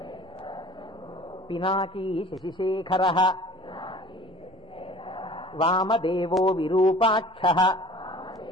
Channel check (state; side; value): normal; both; correlation 0.46